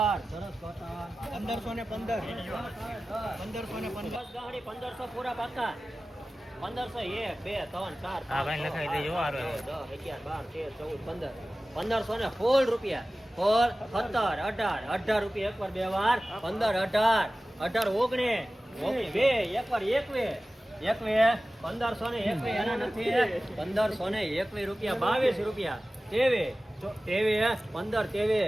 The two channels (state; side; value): normal; both; correlation 0.96